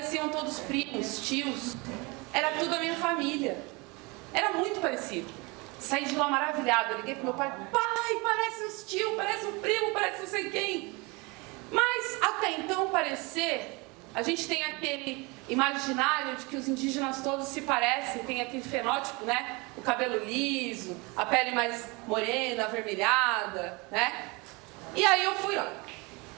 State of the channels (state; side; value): quieter; left; 26.9 dB